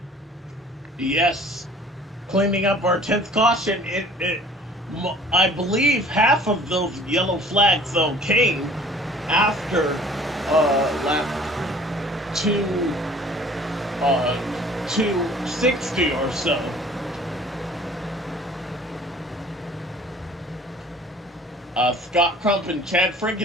Yes, cleaning up our 10th caution. I believe half of those yellow flags though came after lap 260 or so. Scott Crump and Chad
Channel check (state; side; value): normal; both; correlation 0.50